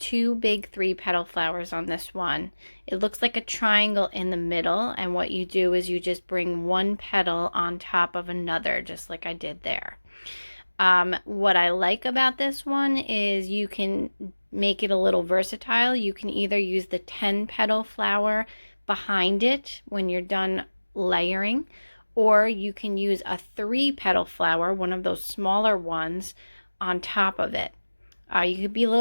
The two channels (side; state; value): both; inverted; correlation -1.00